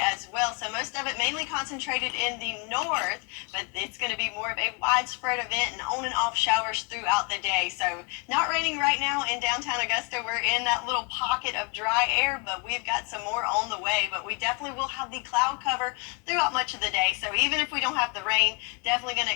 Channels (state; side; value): quieter; right; 32.0 dB